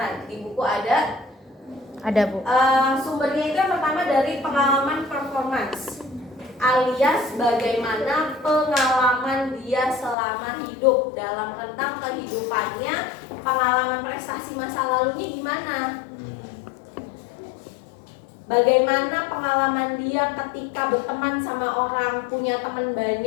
Di buku ada Bu. Sumbernya itu yang pertama dari pengalaman performance, alias bagaimana pengalaman dia selama hidup. Dalam rentang kehidupannya, pengalaman prestasi masa lalunya gimana, bagaimana pengalaman dia ketika berteman sama orang, punya teman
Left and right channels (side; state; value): right; drops out; at 10.2 s